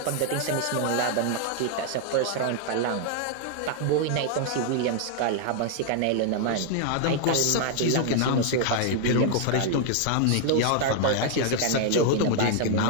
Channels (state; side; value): different; both; correlation 0.00